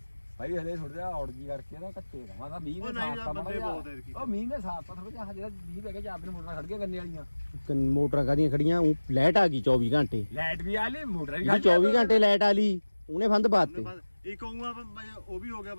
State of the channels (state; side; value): inverted; both; correlation -1.00